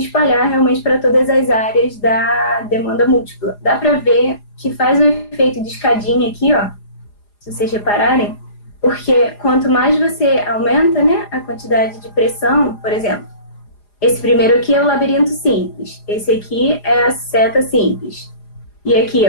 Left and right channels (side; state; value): right; late; 4.9 ms